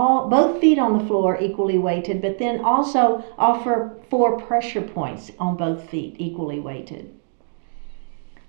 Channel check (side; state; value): left; silent; 65 dB below the other